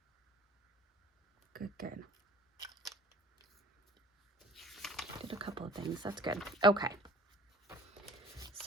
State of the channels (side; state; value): both; normal; correlation 0.48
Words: Good. Did a couple of things. That's good. Okay.